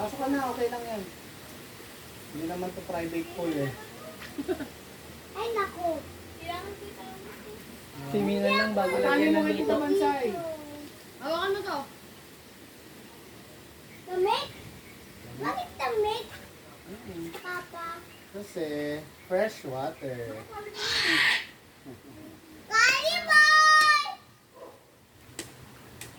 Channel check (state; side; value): identical; both; correlation 1.00